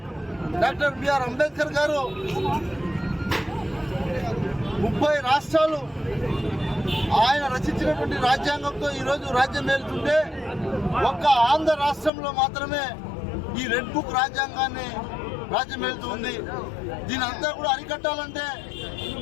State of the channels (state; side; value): drops out; right; at 12.1 s